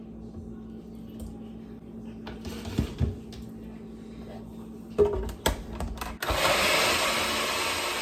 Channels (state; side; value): identical; both; correlation 1.00